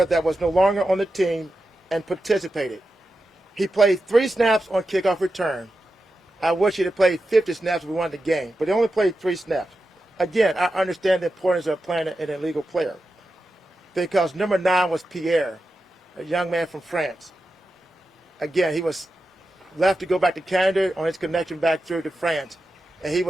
that was no longer on the team and participated. He played 3 snaps on kickoff return. I wish he'd have played 50 snaps if we won the game, but he only played 3 snaps. Again, I understand the importance of playing an illegal player because number 9 was Pierre, a young man from France. Again, he was left to go back to Canada on his connection back through to France, and he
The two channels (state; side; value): normal; both; correlation 0.90